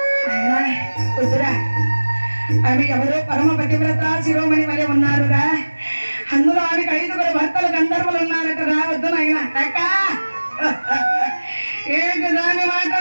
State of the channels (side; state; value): both; inverted; correlation -1.00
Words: అయినా వద్దురా, ఆమె ఎవరో పరమ పతివ్రత శిరోమణి వలె ఉన్నారురా. అందులో ఆమెకు 5గురు భర్తలు గంధర్వులు ఉన్నారట. రావద్దు నాయన. అక్క ఏంటి దాని